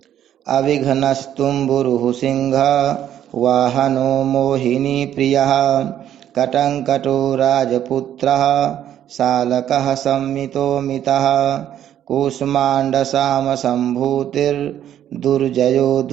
अविघ्नस्तुम्बुरुः सिंह वाहनो मोहिनीप्रियः कटङ्कटो राजपुत्रः शालकः संमितो मितः कूष्माण्डसामसम्भूतिर्दुर्जयो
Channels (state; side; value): quieter; left; 10.7 dB